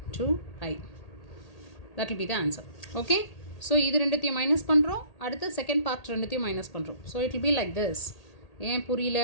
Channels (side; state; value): right; late; 1.8 ms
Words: 2i. That will be the answer. Okay, so இது ரெண்டுத்தையும் மைனஸ் பண்ணுறோம், அடுத்து செகண்ட் பார்ட் ரெண்டுத்தையும் மைனஸ் பண்ணுறோம். So it will be like this. ஏன் புரியல